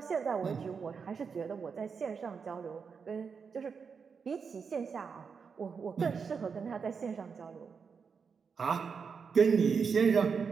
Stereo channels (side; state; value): left; quieter; 5.8 dB